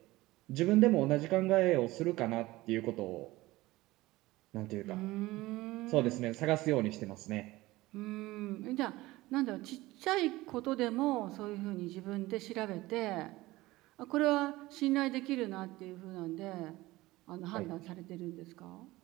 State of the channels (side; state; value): left; quieter; 18.9 dB